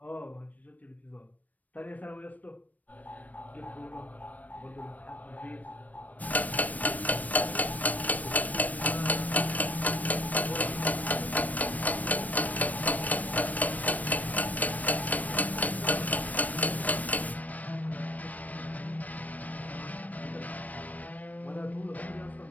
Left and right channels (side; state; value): right; late; 0.075 ms